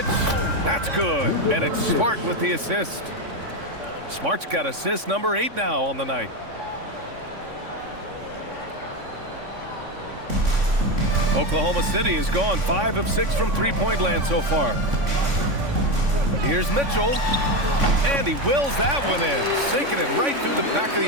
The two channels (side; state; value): left; late; 3.5 ms